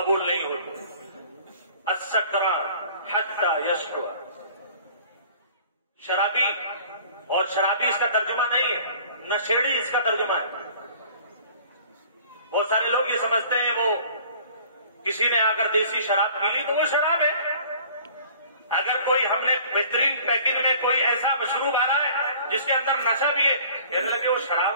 نہیں ہوتے۔ السکران حتی یشرب، شرابی، اور شرابی اس کا ترجمہ نہیں ہے، نشیڑی اس کا ترجمہ ہے۔ بہت سارے لوگ یہ سمجھتے ہیں وہ کسی نے آ کر دیسی شراب پی لی تو وہ شراب ہے۔ اگر کوئی ہم نے بہترین پیکنگ میں کوئی ایسا مشروب آ رہا ہے جس کے اندر نشہ بھی ہے، کہنے لگے وہ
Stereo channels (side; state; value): both; inverted; correlation -0.50